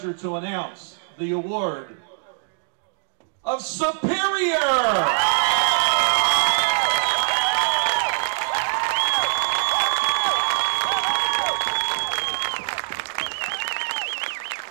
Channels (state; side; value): silent; left; digital silence